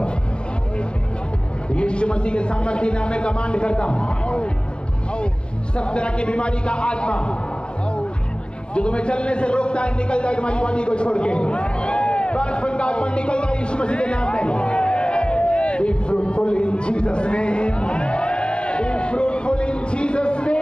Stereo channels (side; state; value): right; late; 0.053 ms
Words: यीशु मसीह के सामर्थ्य नाम में कमांड करता हूं, सब तरह की बीमारी का आत्मा जो तुम्हें चलने से रोकता है निकल जाए तुम्हारी बॉडी को छोड़ के। बचपन का आत्मा निकल जाए यीशु मसीह के नाम में। Be fruitful in Jesus' name. Be fruitful in Jesus'